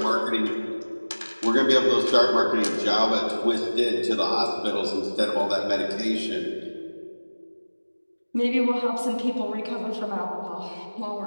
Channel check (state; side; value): inverted; both; correlation -1.00